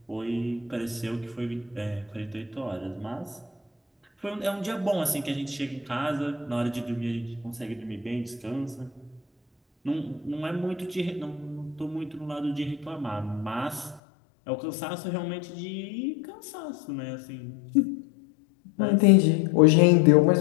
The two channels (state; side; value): drops out; right; at 14.0 s